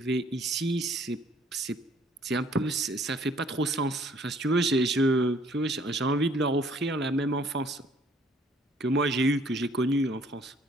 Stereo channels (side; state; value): both; normal; correlation 0.60